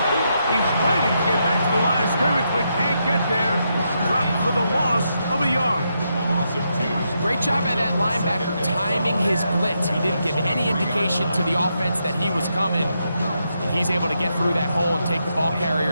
He's fighting to get back to the line of scrimmage, but can't get there. Dropped for the loss of a yard. Great job by that linebacker timing his blitz. He didn't give any indication to the offense that he was coming. And he's able to get through that hole and take the ball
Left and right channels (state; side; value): inverted; both; correlation -0.82